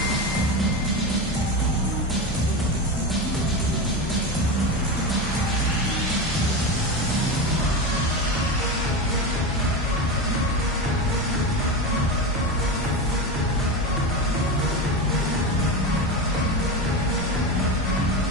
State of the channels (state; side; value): normal; both; correlation 0.20